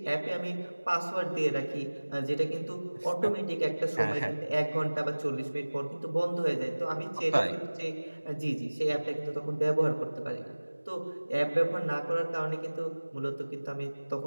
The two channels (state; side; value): inverted; both; correlation -1.00